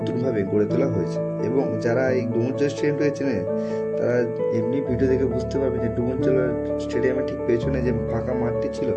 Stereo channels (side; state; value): both; identical; correlation 1.00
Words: গড়ে তোলা হয়েছে, এবং যারা এই ডুমুরজলা স্টেডিয়ামটাকে চেনে তারা এমনি ভিডিও দেখে বুঝতে পারবে যে ডুমুরজলা স্টেডিয়ামের ঠিক পেছনে যে ফাঁকা মাঠটি ছিল,